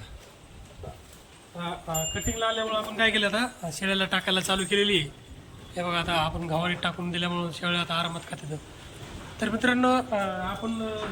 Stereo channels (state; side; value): identical; both; correlation 1.00